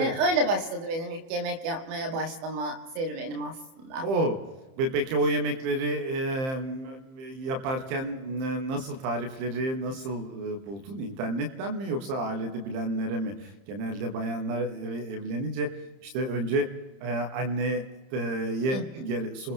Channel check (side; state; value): left; late; 30 ms